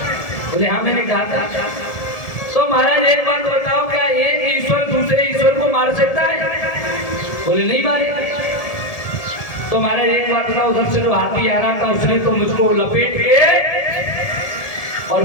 बोले हाँ मैंने कहा था। तो महाराज एक बात बताओ, क्या एक ईश्वर दूसरे ईश्वर को मार सकता है? बोले नहीं मारे। तो महाराज एक बात बताओ, उधर से जो हाथी आ रहा था उसने तो मुझको लपेट के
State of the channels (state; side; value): late; right; 1.7 ms